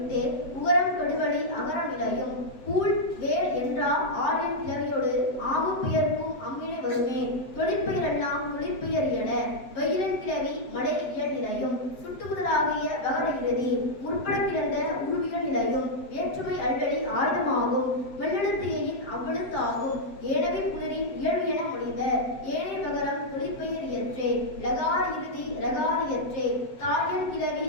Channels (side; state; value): right; late; 7.9 ms